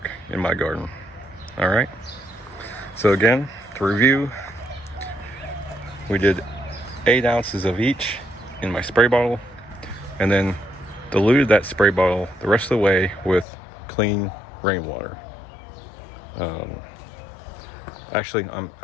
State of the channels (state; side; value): drops out; right; at 13.5 s